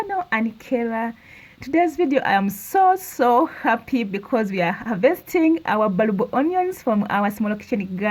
Anikera. Today's video I am so happy because we are harvesting our bulb onions from our small kitchen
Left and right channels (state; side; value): identical; both; correlation 1.00